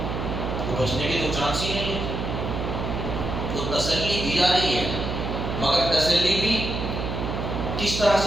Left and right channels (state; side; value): noise; right; hum, 3 dB below the sound